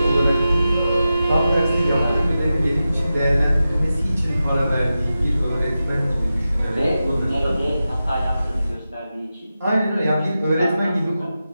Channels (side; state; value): both; inverted; correlation -0.92